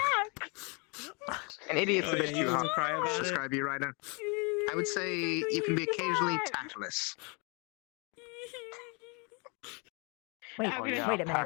An idiot's Oh, a bit yeah, you too wanna hard cry to about it? describe you right now. I would say you can be occasionally tactless. Wait, I'm Oh, gonna yeah, wait a I'll minute.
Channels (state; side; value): quieter; right; 32.2 dB